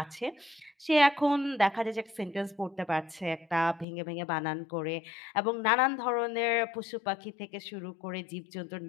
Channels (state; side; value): drops out; right; at 3.9 s